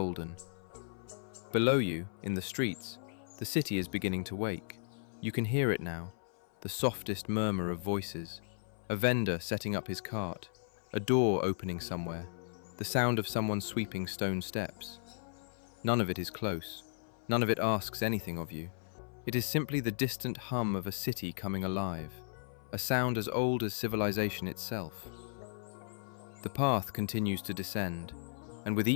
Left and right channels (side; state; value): right; silent; 54 dB below the other